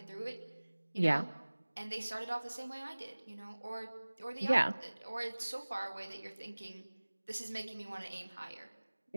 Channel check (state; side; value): inverted; both; correlation -1.00